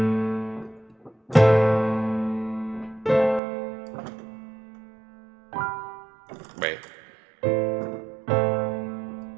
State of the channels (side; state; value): left; drops out; at 3.4 s